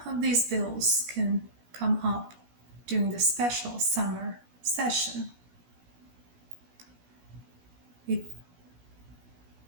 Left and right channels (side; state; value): left; late; 17 ms